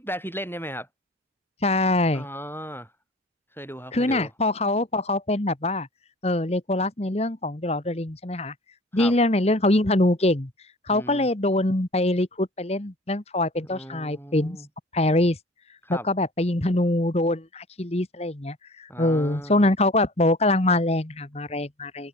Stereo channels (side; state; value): both; normal; correlation 0.45